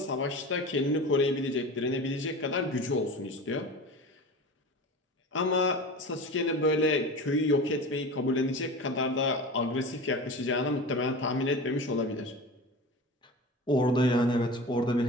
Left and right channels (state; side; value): normal; both; correlation 0.32